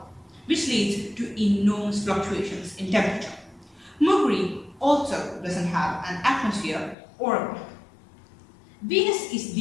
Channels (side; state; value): right; drops out; at 7.0 s